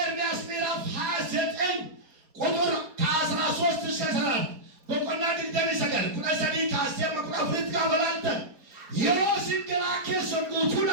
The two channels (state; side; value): late; left; 4.5 ms